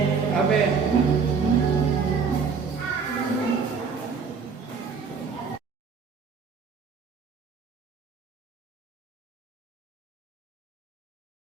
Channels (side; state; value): left; quieter; 5.5 dB